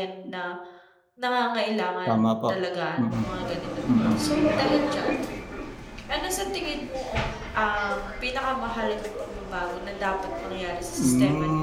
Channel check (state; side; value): identical; both; correlation 1.00